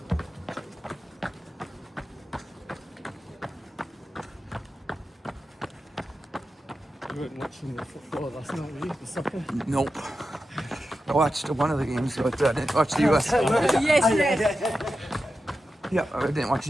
You weren't watching the football last night, were you? The soccer? Nope. I watched one of the games, but I didn't watch the US. Yes. Yeah, I didn't watch the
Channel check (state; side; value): normal; both; correlation 0.91